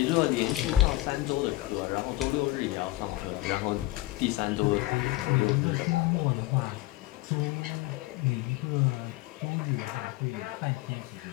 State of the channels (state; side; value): quieter; right; 17.9 dB